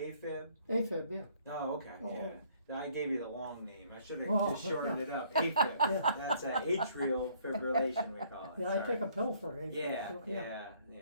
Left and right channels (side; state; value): both; inverted; correlation -0.62